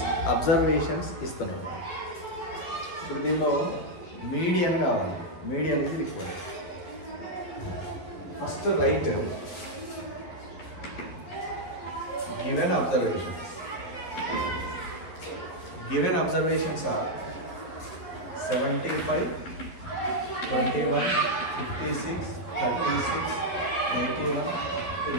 observations ఇస్తున్నారు. ఇప్పుడు దీనిలో మీడియన్ కావాలి. మీడియన్ ఇది required. First right given observations. Given observations are 75, 21, 56, 36, 81,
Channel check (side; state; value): right; late; 12 ms